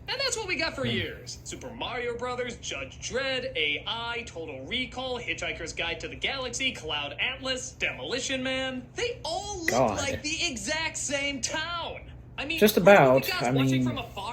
And that's what we got for years. Super Mario Brothers, Judge Dredd, AI, Total Recall, Hitchhiker's Guide to the Galaxy, Cloud Atlas, Demolition Man. They all look God. like the exact same town. I mean, Just were you about. guys I watching mean, from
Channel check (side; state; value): both; identical; correlation 1.00